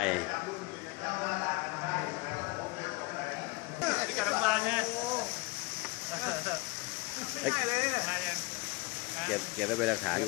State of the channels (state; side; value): quieter; right; 24.8 dB